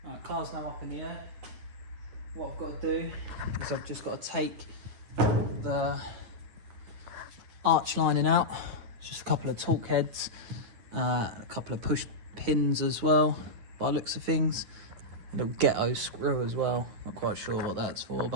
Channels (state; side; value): late; left; 9.6 ms